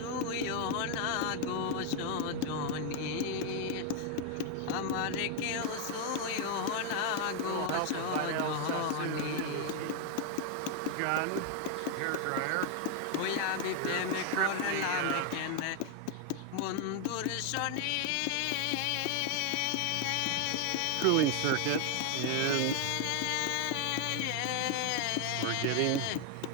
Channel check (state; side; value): different; both; correlation 0.01